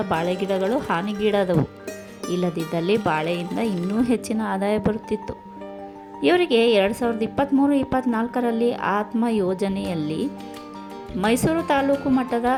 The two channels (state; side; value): identical; both; correlation 1.00